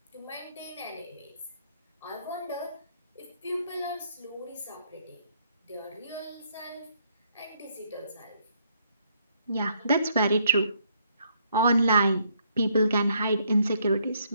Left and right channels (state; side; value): inverted; both; correlation -0.70